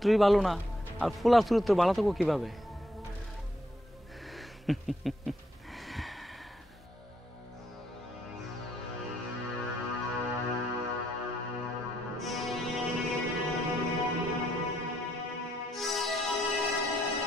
ভালো না, আর ফুলার চরিত্র ভালো থাকবো কিভাবে?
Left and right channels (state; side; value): normal; both; correlation 0.74